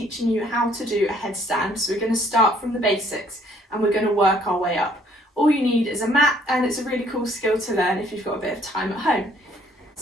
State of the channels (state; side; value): normal; both; correlation 0.62